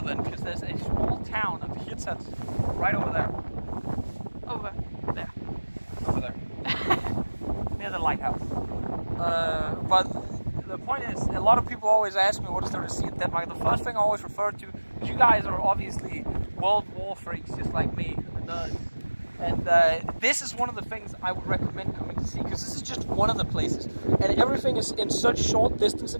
because there's a small town of Hirtshals right over there. Over der. Over there. Near the lighthouse. But the point is, a lot of people always ask me what is there to see in Denmark. The first thing I always refer to, because you guys are obviously World War freaks just like me, nerds. And this is one of the things I would recommend coming to see, because this is just one of the places. And everything is in such short distance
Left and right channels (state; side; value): inverted; both; correlation -1.00